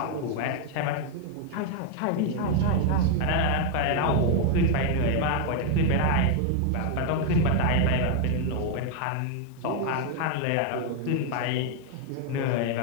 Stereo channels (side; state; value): both; different; correlation 0.00